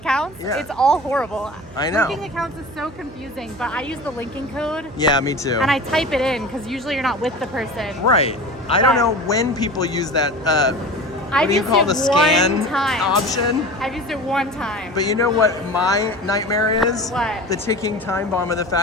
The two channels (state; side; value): noise; right; hum, 19 dB below the sound